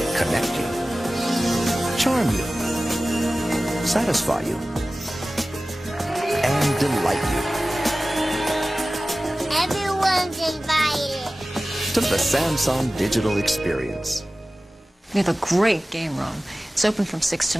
connect you, charm you, satisfy you, and delight you. Everyone's invited To the Samsung Digital Experience. We have a great game room. It's open from 6 to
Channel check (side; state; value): both; normal; correlation 0.97